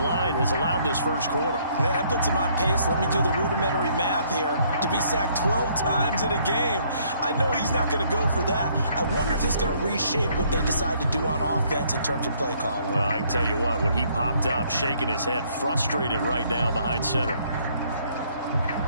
line has allowed this first quarter. Man, that puts him on pace. Let me do the rudimentary math here. To be sacked 12 times in a game, I know he's not going to go for that. I wonder if it's going to reshape what they decide to do on offense in terms of play calling. Well, I can tell you what, when he popped up, shaking his head, frustrated right now behind center.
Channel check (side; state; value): both; inverted; correlation -0.65